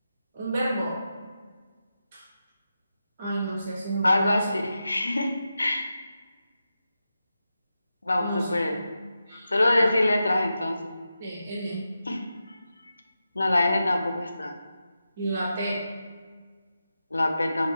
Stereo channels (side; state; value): both; inverted; correlation -0.90